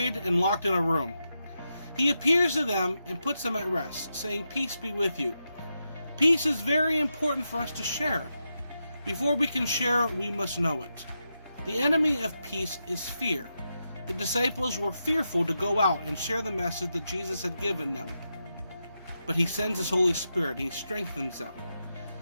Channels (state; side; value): inverted; both; correlation -0.86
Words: and locked in a room. He appears to them and puts them at rest, saying, "Peace be with you." Peace is very important for us to share. Before we can share, we must know it. The enemy of peace is fear. The disciples were fearful to go out and share the message that Jesus had given them. But he sends his Holy Spirit, he strengthens them.